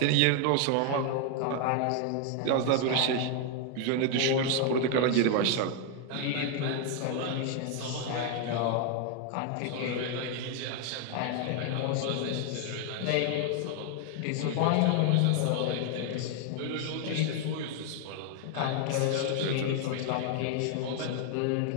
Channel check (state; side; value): different; both; correlation 0.00